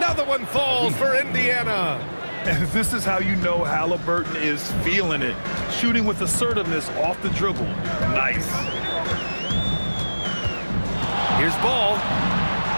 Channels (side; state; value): both; inverted; correlation -1.00